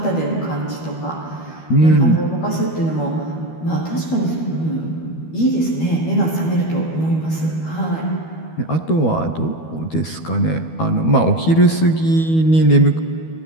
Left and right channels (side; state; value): right; late; 12 ms